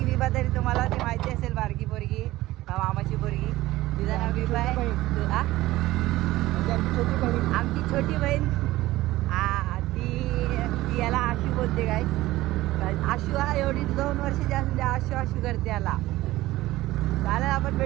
विभा तरी तुम्हाला ती माहिती असेल. बारकी पोरगी मामाची पोरगी तिचं नाव विभा आहे. आमची छोटी बहीण ती याला आशू बोलते काय. आशू हा एवढी 2 वर्षाची असून आशू करते याला. चालेल आपण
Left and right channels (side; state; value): left; quieter; 17.1 dB